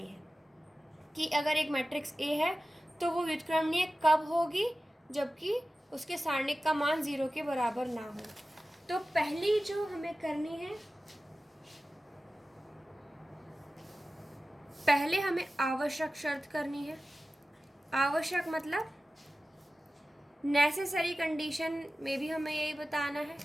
है कि अगर एक मैट्रिक्स ए है तो वो व्युत्क्रमणीय कब होगी, जबकि उसके सारणिक का मान 0 के बराबर ना हो। तो पहली जो हमें करनी है, पहले हमें आवश्यक शर्त करनी है। आवश्यक मतलब नेसेसरी कंडीशन में भी हमें यही बताना है।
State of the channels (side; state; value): both; normal; correlation 0.95